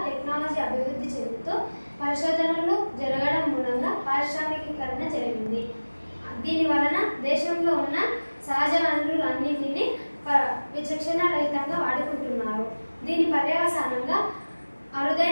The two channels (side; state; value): both; inverted; correlation -1.00